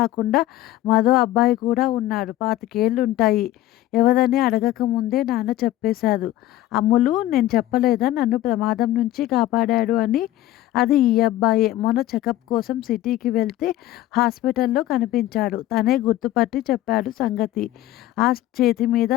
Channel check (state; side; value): quieter; right; 14.7 dB